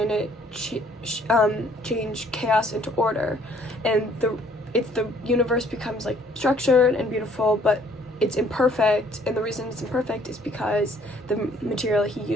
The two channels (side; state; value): both; normal; correlation 0.61